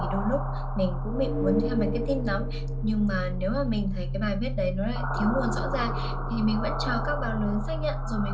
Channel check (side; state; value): both; identical; correlation 1.00